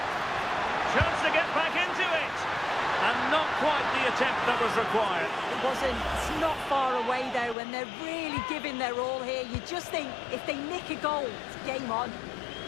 Chance to get back into it. And not quite the attempt that was required. It wasn't. It's not far away, though, and they're really giving their all here. You just think, if they nick a goal, it's game on.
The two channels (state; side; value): drops out; right; at 7.6 s